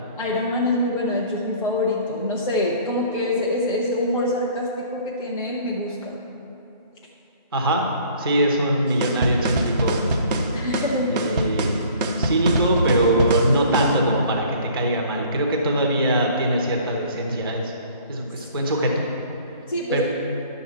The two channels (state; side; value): inverted; both; correlation -0.52